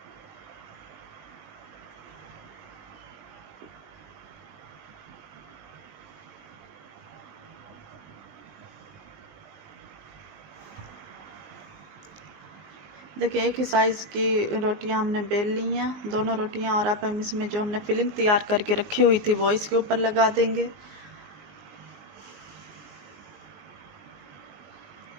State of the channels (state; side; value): late; left; 20 ms